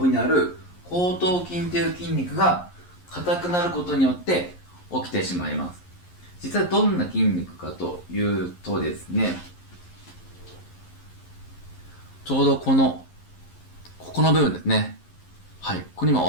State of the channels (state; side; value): late; right; 11 ms